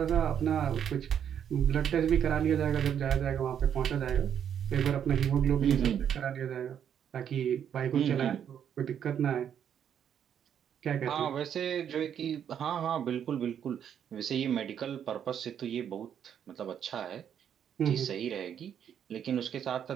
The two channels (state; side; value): quieter; left; 8.9 dB